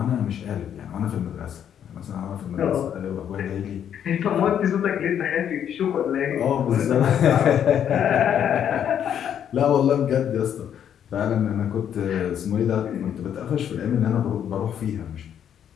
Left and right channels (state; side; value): quieter; right; 9.2 dB